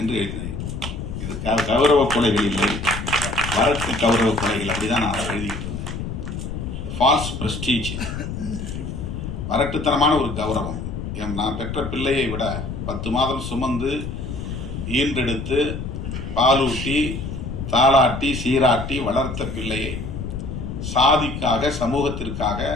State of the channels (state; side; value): noise; left; rumble, 6 dB below the sound